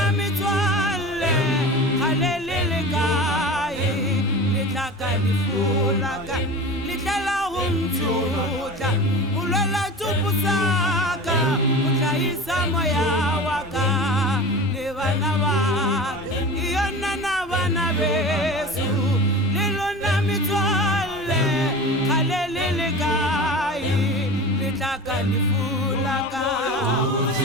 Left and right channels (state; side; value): normal; both; correlation 0.33